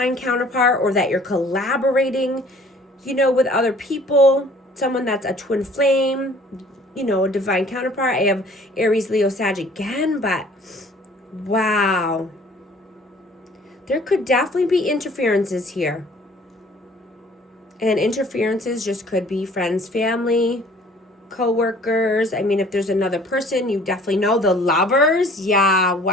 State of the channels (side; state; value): both; normal; correlation 0.53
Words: counterpart, or that you're collaborating, you know, with other people. Someone that's a twin flame, you know, a divine counterpart. I have Aries, Leo, Sag again, but wow. There could definitely be interferences here. And interferences just could be friends, family, co-workers. I mean, if there's another person, you definitely know. The lovers, yeah,